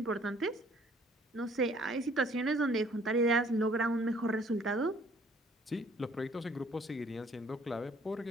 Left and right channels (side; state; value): both; normal; correlation 0.59